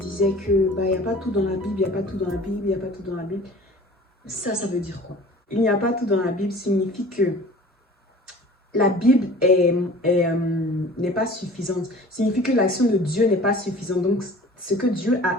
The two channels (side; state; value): both; normal; correlation 0.44